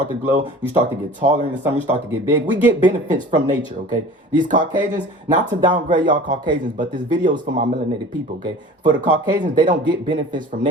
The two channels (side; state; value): both; normal; correlation 0.41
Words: to glow, you start to get taller in the summer, you start to get big. We get benefits from nature, okay? These Caucasians, not to downgrade y'all Caucasians, but this video is for my melanated people, okay? For the Caucasians, they don't get benefits from